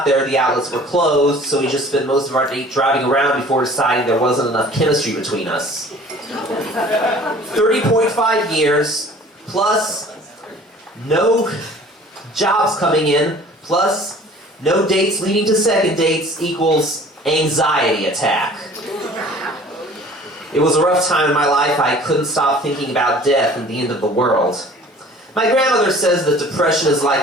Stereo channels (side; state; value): both; normal; correlation 0.48